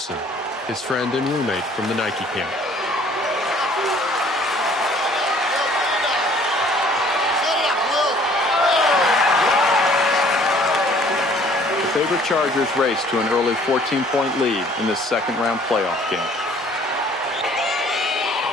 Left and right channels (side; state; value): both; normal; correlation 0.56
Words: his friend and roommate from the Nike camp. The favorite Chargers race to an early 14-point lead in this second-round playoff game.